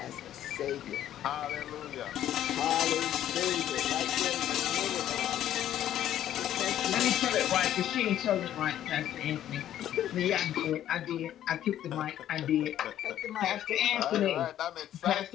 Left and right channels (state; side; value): quieter; right; 11.6 dB